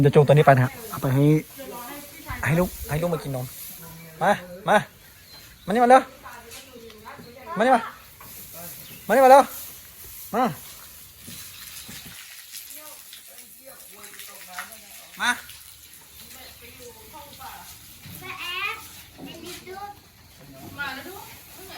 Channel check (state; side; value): identical; both; correlation 1.00